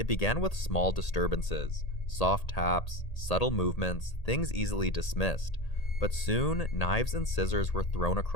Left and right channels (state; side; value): late; right; 1.8 ms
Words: began with small disturbances, soft taps, subtle movements, things easily dismissed. But soon, knives and scissors were thrown